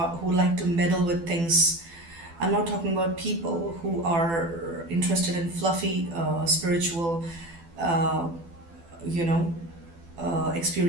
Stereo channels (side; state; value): left; late; 12 ms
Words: like to meddle with things. I'm not talking about people who are interested in fluffy spiritual, uh, you know,